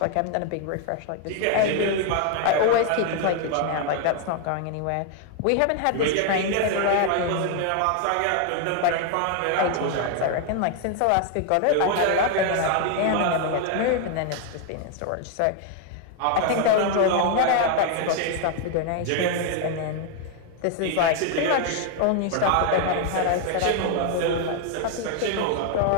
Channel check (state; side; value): different; both; correlation 0.00